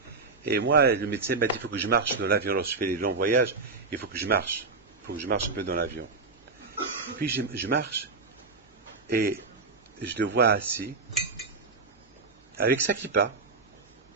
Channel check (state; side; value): quieter; left; 4.2 dB